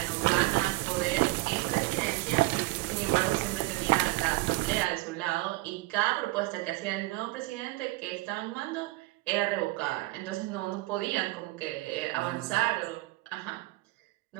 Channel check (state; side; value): quieter; left; 21.0 dB